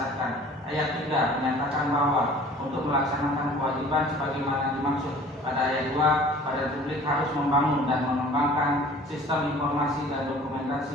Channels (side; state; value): both; normal; correlation 0.48